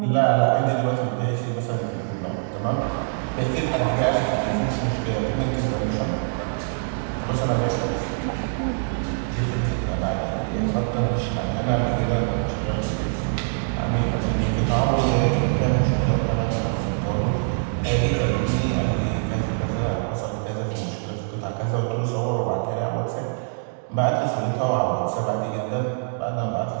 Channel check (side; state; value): left; silent; digital silence